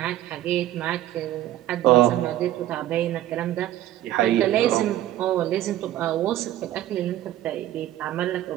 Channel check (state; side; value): quieter; left; 13.6 dB